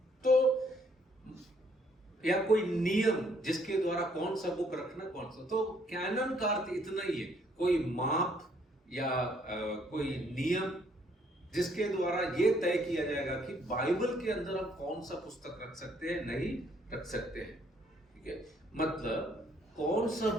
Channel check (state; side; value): normal; both; correlation 0.67